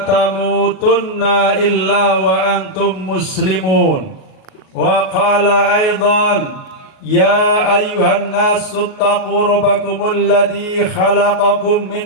tamutunna illa wa antum muslimun. Wa qala aidan ya ayyuhan nasu taqu rabbakumul ladzi khalaqakum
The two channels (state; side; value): late; right; 38 ms